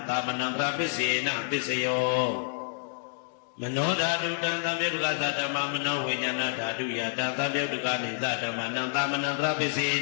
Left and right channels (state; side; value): silent; right; digital silence